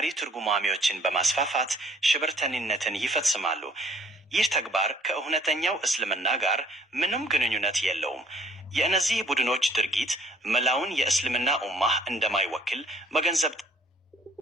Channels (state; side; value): normal; both; correlation 0.59